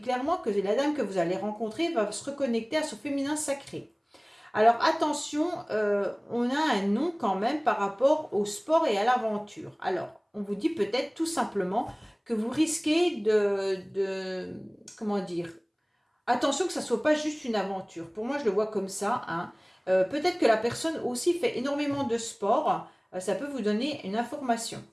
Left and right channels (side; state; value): both; identical; correlation 1.00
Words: clairement que la dame que vous allez rencontrer va se reconnecter à son féminin sacré. Alors attention, on a un nom quand même par rapport au sport et à l'aventure. Alors, on vous dit peut-être tout simplement que vous risquez comment dire, attention que ça ne soit pas juste une aventure. Pour moi, je le vois comme ça, hein. Peut-être que la personne aussi fait énormément de sport. Ça peut vous donner une information.